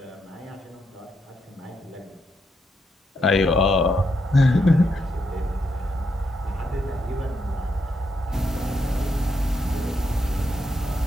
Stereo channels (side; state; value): both; normal; correlation 0.81